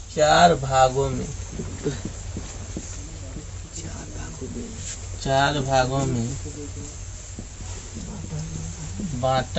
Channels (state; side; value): identical; both; correlation 1.00